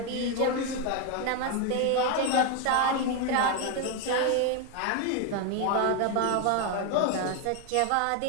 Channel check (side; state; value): both; different; correlation 0.01